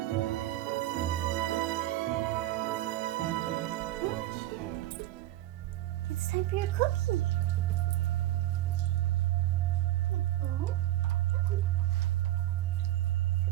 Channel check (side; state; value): left; quieter; 15.0 dB